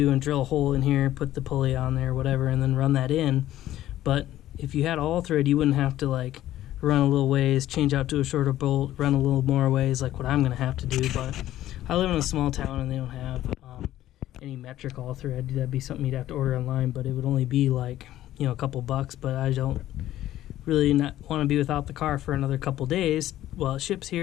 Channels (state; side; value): quieter; right; 13.7 dB